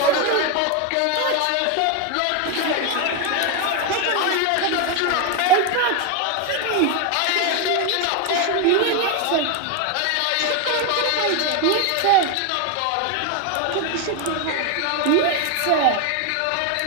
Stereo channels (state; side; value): different; both; correlation 0.02